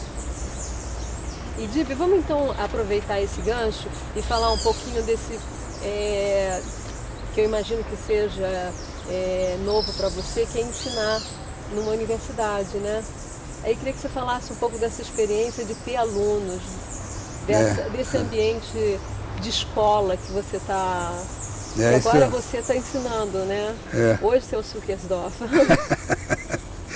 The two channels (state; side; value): identical; both; correlation 1.00